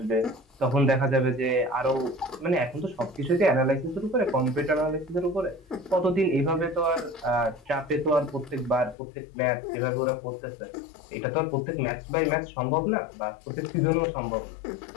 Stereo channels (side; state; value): right; drops out; at 9.0 s